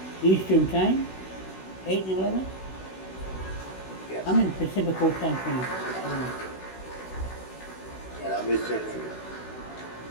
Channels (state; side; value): late; right; 16 ms